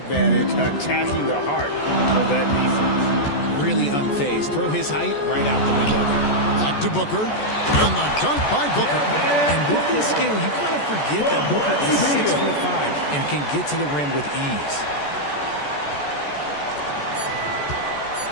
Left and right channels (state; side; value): late; right; 14 ms